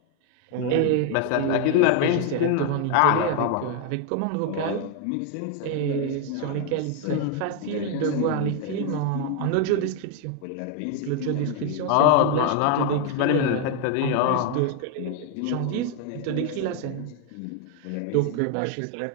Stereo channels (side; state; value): both; different; correlation 0.01